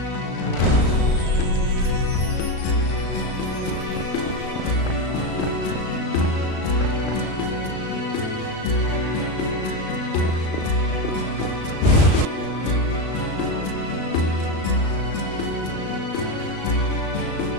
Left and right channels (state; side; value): late; right; 36 ms